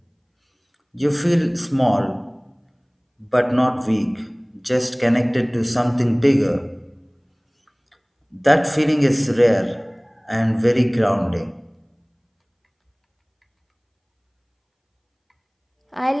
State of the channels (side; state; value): both; identical; correlation 1.00